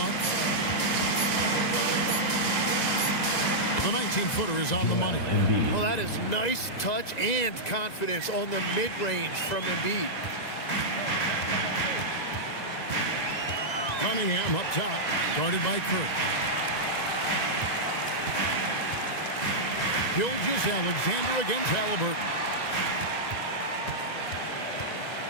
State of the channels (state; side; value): late; right; 2.0 ms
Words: The 19-footer is on the money. Well, that is nice touch and confidence on the mid-range from Embiid. Cunningham up top, guarded by Kirk. Gilgeous-Alexander against Halliburton.